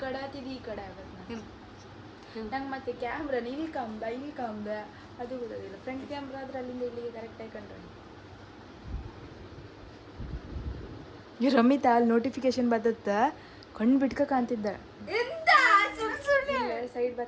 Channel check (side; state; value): both; identical; correlation 1.00